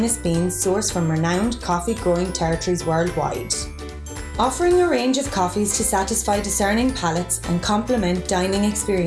beans sourced from renowned coffee growing territories worldwide. Offering a range of coffees to satisfy discerning palates and complement dining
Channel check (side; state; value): both; identical; correlation 1.00